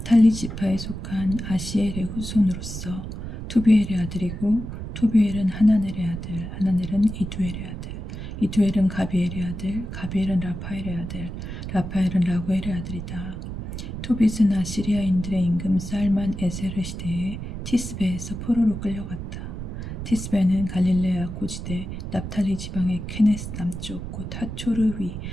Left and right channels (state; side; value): noise; right; rumble, 7 dB below the sound